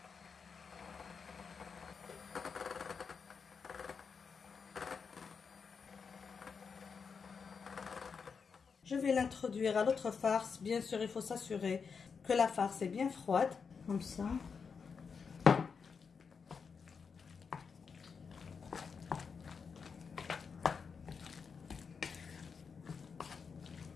Je vais l'introduire à l'autre farce. Bien sûr, il faut s'assurer que la farce est bien froide, comme ça.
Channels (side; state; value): right; quieter; 5.7 dB